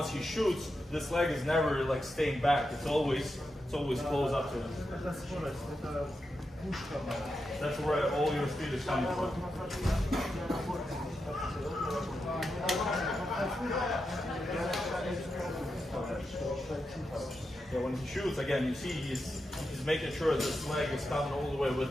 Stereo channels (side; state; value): both; normal; correlation 0.87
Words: he shoots, this leg is never like staying back. It's always close up to him. Это скорость, это пушка моя. That's where all your speed is coming from. Yeah, when he shoots, again, you see he's making sure this leg is coming all the way with